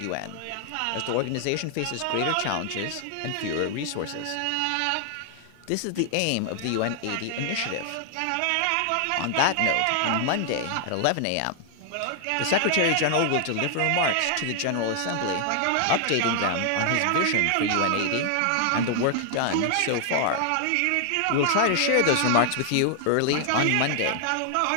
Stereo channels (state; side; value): different; both; correlation 0.00